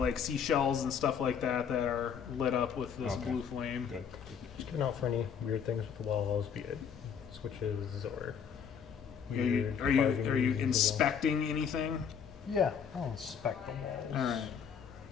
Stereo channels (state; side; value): quieter; right; 7.3 dB